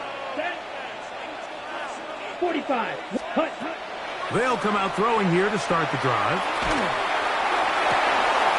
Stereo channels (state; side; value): identical; both; correlation 1.00